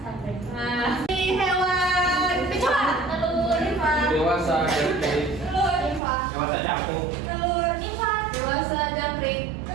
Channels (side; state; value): left; drops out; at 6.0 s